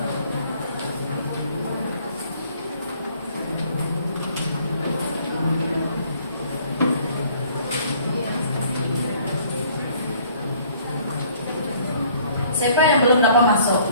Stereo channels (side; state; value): both; inverted; correlation -0.59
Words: Siapa yang belum dapat masuk?